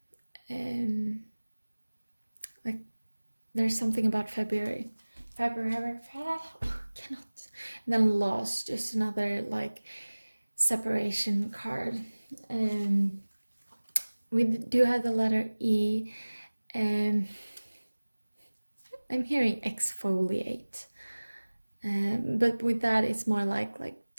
Like there's something about February. Cannot. And then loss, just another like separation card. We do have the letter E. I'm hearing exfoliate. But with that, it's more like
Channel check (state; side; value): inverted; both; correlation -1.00